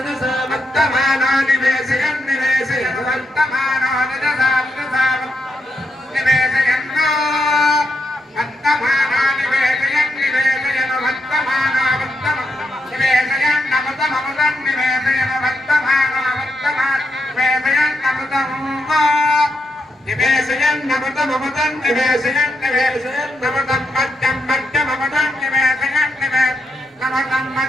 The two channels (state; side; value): normal; both; correlation 0.82